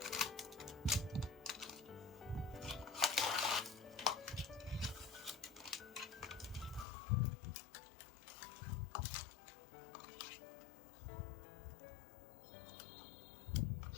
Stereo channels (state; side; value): drops out; right; at 6.9 s